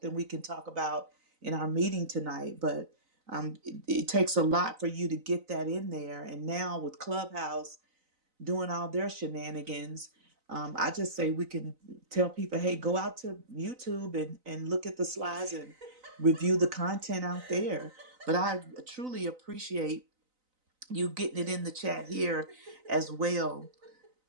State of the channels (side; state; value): left; late; 3.9 ms